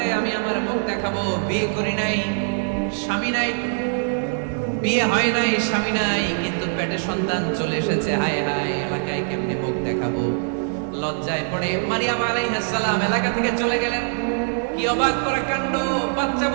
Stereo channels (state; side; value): silent; left; 60 dB below the other